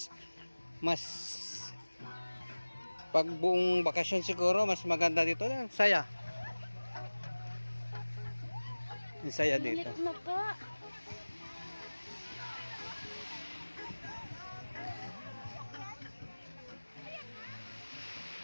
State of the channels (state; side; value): inverted; both; correlation -1.00